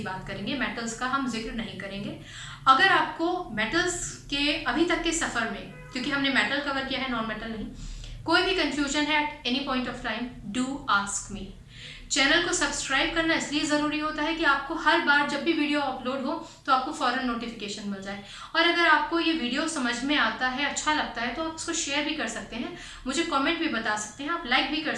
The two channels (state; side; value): identical; both; correlation 1.00